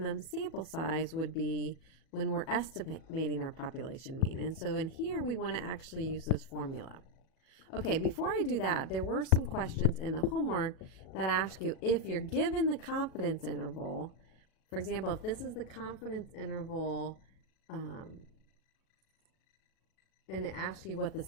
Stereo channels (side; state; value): right; late; 37 ms